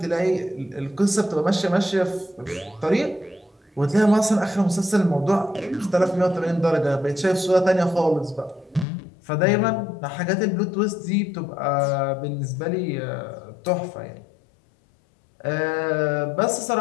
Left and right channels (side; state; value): right; drops out; at 8.8 s